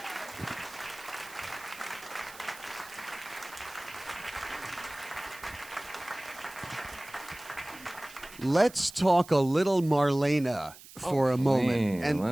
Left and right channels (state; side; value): noise; right; hiss, 19 dB below the sound